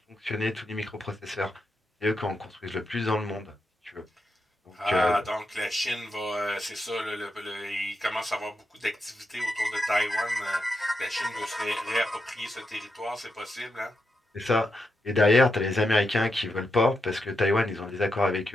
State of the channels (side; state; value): both; normal; correlation 0.85